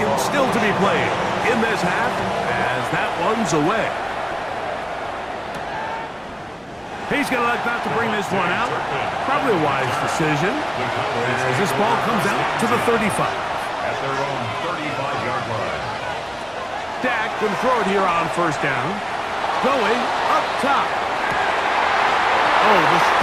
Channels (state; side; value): identical; both; correlation 1.00